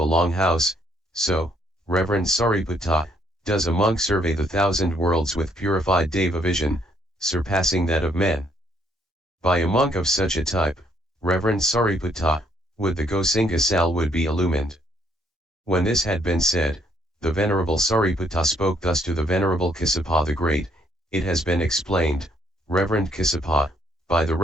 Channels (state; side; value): normal; both; correlation 0.69